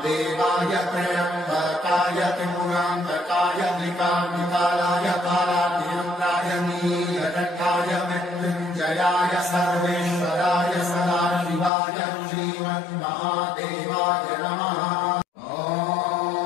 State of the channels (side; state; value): right; drops out; at 11.7 s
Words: त्र्यम्बकाय त्रिपुरान्तकाय मृगाम्बिकालाय कालातिरुद्राय नीलकण्ठाय मृत्युञ्जयाय सर्वेश्वराय सदाशिवाय श्रीमन्महादेवाय नमः।